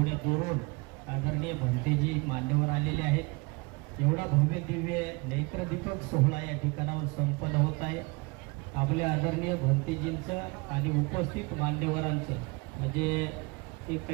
दुरून आदरणीय भंतेजी मान्यवर आलेले आहेत। एवढा भव्य दिव्य नेत्रदीपक सोहळा या ठिकाणावर संपन्न होत आहे। आपल्या आदरणीय भंतेजींचं आणि उपस्थित मान्यवरांचं म्हणजे ते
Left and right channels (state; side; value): quieter; left; 27.2 dB